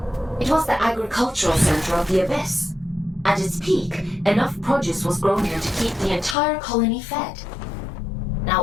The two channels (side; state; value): right; drops out; at 6.4 s